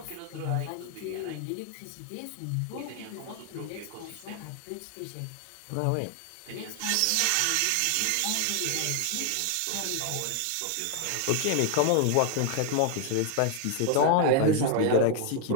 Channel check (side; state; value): both; different; correlation 0.00